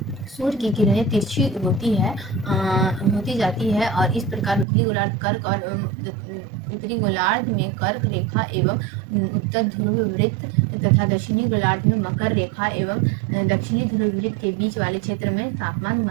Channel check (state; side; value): drops out; left; at 4.7 s